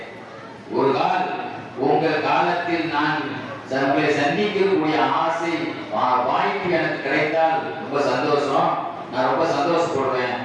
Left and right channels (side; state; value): both; identical; correlation 1.00